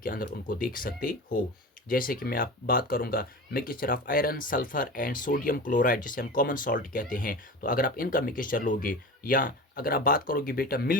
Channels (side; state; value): both; normal; correlation 0.32